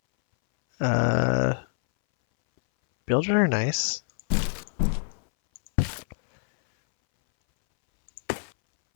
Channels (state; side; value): silent; right; 62 dB below the other